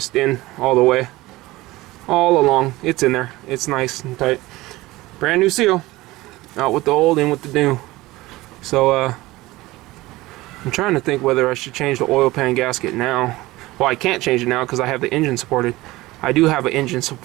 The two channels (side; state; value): left; quieter; 19.2 dB